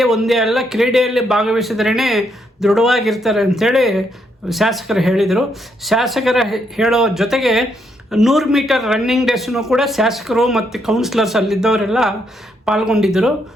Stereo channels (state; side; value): normal; both; correlation 0.76